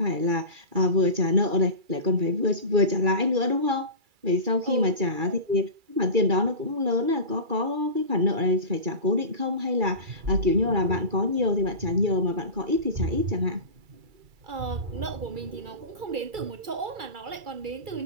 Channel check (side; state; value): left; late; 2.3 ms